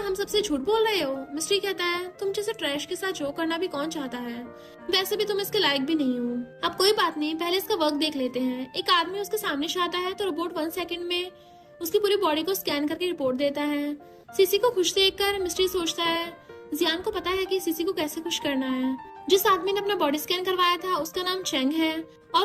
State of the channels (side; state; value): both; identical; correlation 1.00